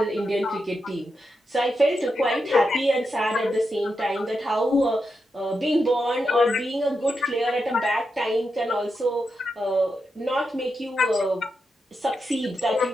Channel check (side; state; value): both; normal; correlation 0.86